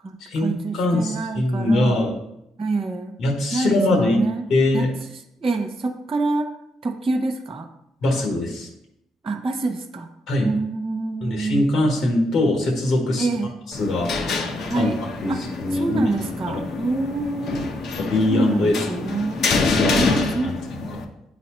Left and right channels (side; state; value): both; normal; correlation 0.78